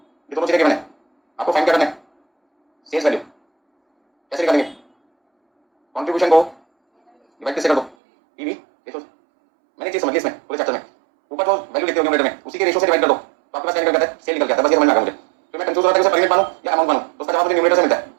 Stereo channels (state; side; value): drops out; left; at 8.0 s